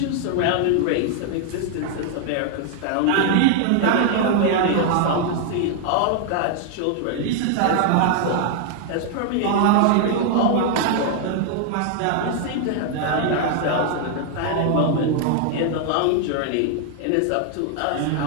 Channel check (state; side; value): different; both; correlation 0.00